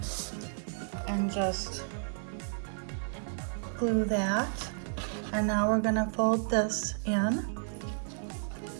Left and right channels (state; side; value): silent; left; digital silence